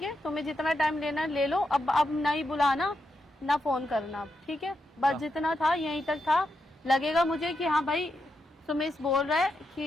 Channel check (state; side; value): normal; both; correlation 0.84